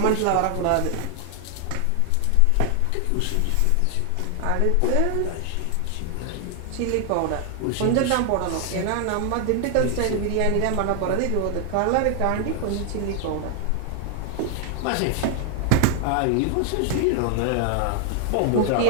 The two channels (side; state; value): both; different; correlation 0.00